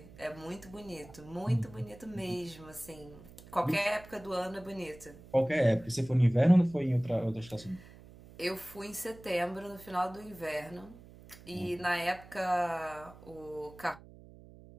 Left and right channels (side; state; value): right; noise; hum, 20 dB below the sound